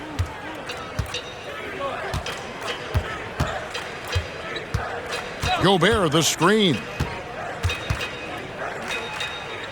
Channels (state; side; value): identical; both; correlation 1.00